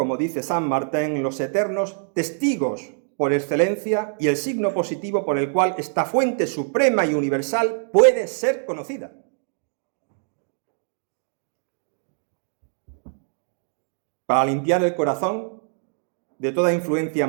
dice San Martín, los eternos testigos por excelencia y el signo positivo por el cual esta fuente suprema y universal puede ser conocida. Para limpiar el corazón de toda influencia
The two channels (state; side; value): silent; left; digital silence